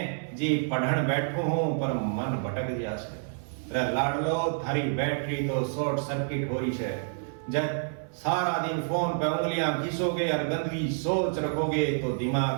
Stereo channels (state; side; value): silent; left; 57 dB below the other